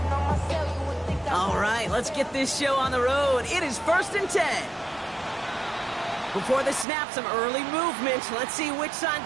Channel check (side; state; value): left; drops out; at 6.9 s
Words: Let's get this show on the road. It is 1st and 10. Before the snap, some early movement. Let's see which side